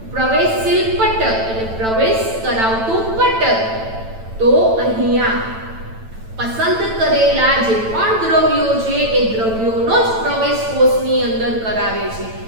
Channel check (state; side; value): late; left; 9.0 ms